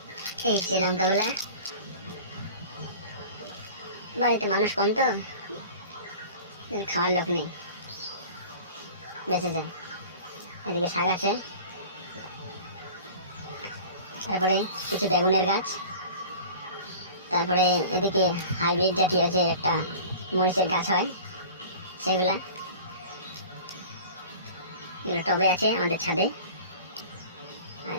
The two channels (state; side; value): inverted; both; correlation -0.40